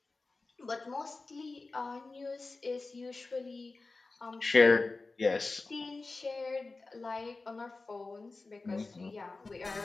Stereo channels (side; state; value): right; quieter; 3.6 dB